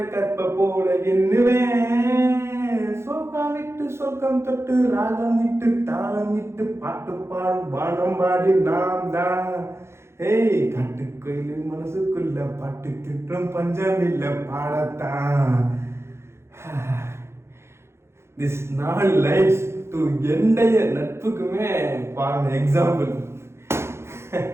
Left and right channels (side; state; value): left; late; 0.13 ms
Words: கற்ப போல எண்ணுவேன். சோகம் விட்டு சோகம் தொட்டு ராகம் விட்டு தாளம் விட்டு பாட்டு பாடும் பாடம் பாடி நாம் தான். ஏய் காட்டுக்கோயில் மனசுக்குள்ள பாட்டு திட்டம் பஞ்சம் இல்ல பாடத்தான். This 4 lines to எண்டைய நட்புக்குமே பாருங்க எக்ஸாம்பிள்.